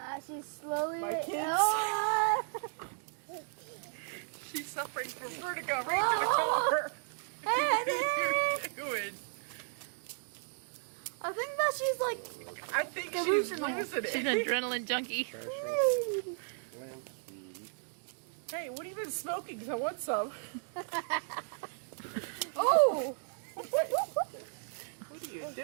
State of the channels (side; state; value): left; silent; digital silence